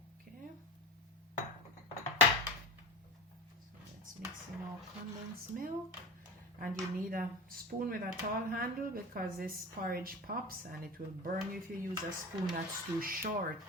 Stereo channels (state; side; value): normal; both; correlation 0.28